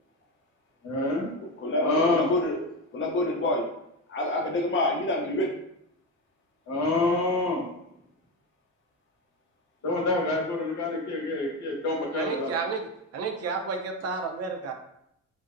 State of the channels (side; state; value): both; normal; correlation 0.16